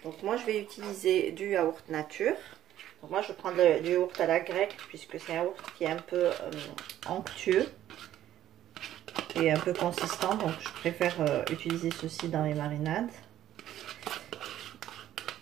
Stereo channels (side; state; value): left; quieter; 12.4 dB